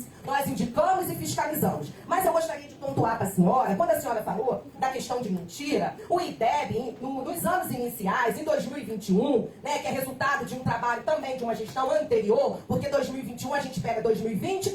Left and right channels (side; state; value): both; identical; correlation 1.00